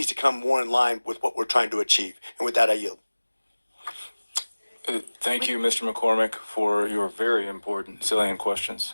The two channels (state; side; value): inverted; both; correlation -1.00